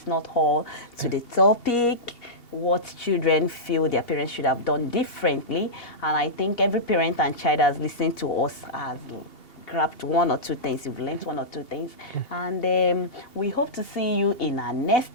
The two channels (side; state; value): right; late; 2.8 ms